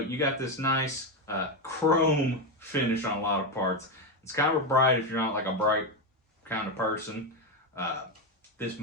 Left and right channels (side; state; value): both; normal; correlation 0.10